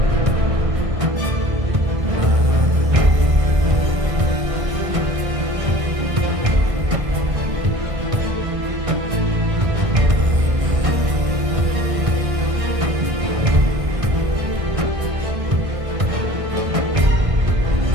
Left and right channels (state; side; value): late; left; 1.6 ms